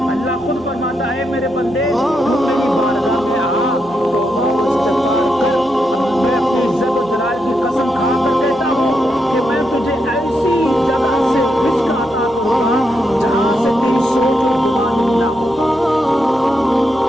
اللہ خود فرماتا ہے میرے بندے تو میری بارگاہ میں آ، توبہ و استغفار کر. میں اپنی عزت و جلال کی قسم کھا کر کہتا ہوں کہ میں تجھے ایسی جگہ سے رزق عطا کروں گا جہاں سے تیری سوچ اور گمان نہ ہو.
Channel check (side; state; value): right; noise; hum, 24 dB below the sound